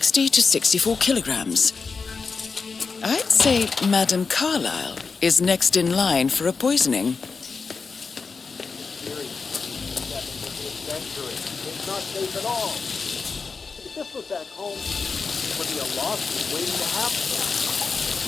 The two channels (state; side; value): quieter; right; 4.8 dB